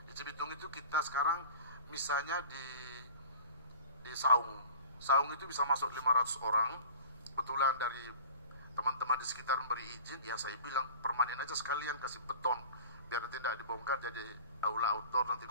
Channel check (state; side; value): inverted; both; correlation -0.42